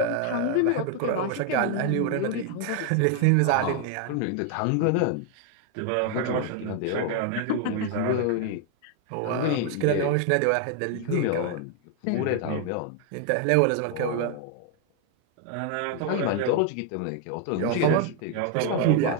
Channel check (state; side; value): different; both; correlation 0.01